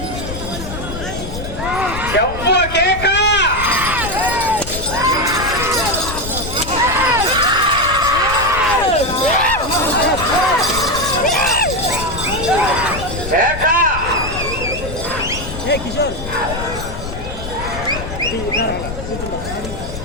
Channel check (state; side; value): noise; left; rumble, 8 dB below the sound